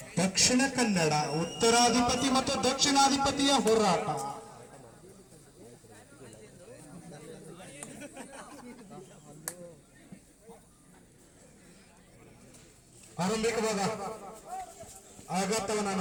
ದಕ್ಷಿಣ ಕನ್ನಡ, ಉತ್ತರಾಧಿಪತಿ ಮತ್ತು ದಕ್ಷಿಣಾಧಿಪತಿಯ ಹೋರಾಟ. ಆರಂಭಿಕವಾದ ಆಘಾತವನ್ನು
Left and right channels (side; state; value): both; identical; correlation 1.00